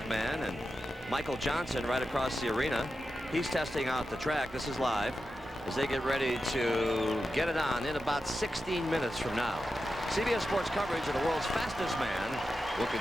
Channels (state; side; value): normal; both; correlation 0.90